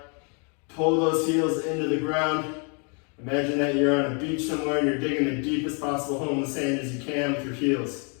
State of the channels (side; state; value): right; quieter; 37.6 dB